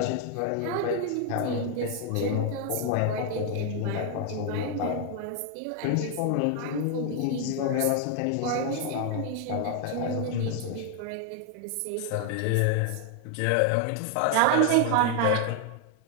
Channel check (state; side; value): different; both; correlation 0.00